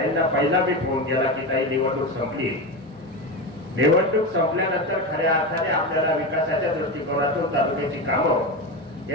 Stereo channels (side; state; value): both; normal; correlation 0.19